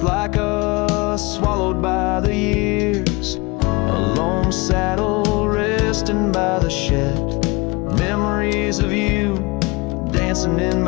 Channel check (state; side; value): quieter; right; 26.0 dB